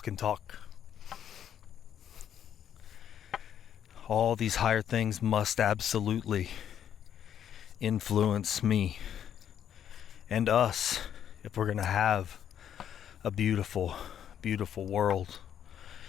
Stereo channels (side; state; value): right; quieter; 9.5 dB